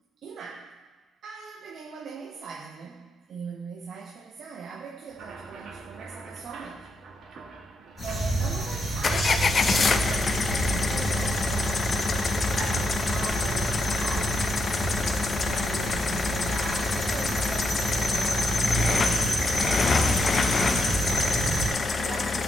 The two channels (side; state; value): both; normal; correlation 0.81